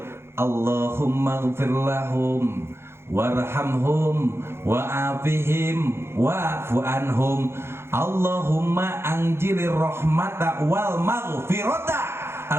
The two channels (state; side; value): late; left; 0.12 ms